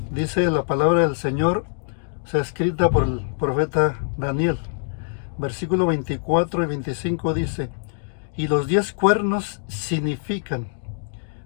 dice la palabra del Señor, escrita por el profeta Daniel. Versículo 24 y 25 dice: y los 10 cuernos significan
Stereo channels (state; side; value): silent; right; digital silence